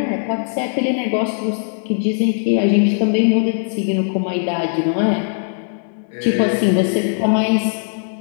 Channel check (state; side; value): silent; right; digital silence